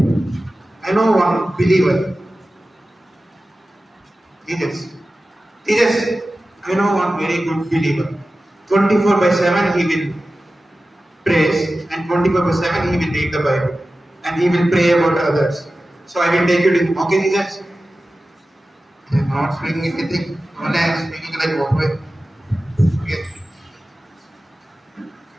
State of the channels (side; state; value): both; normal; correlation 0.95